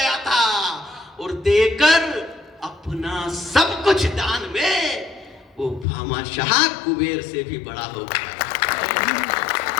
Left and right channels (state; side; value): drops out; right; at 5.9 s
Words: था और देकर अपना सब कुछ दान में वो भामाशाह कुबेर से भी बड़ा हो गया।